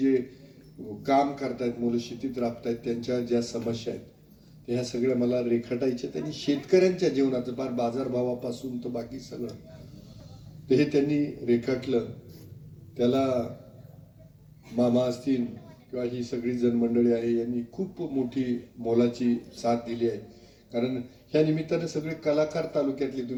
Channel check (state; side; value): identical; both; correlation 1.00